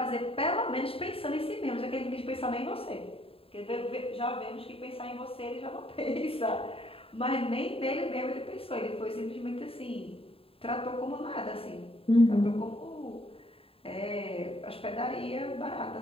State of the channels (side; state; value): right; late; 0.27 ms